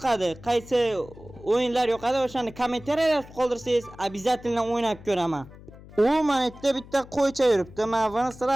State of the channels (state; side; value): noise; left; hum, 19 dB below the sound